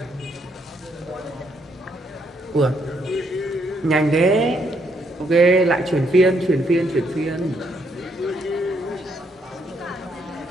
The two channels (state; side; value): normal; both; correlation 0.74